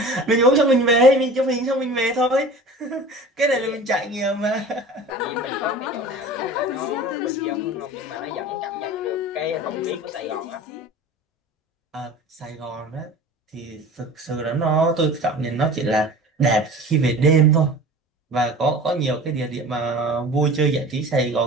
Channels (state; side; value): normal; both; correlation 0.39